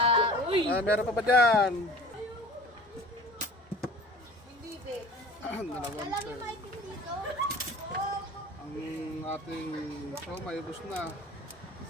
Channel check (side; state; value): both; normal; correlation 0.43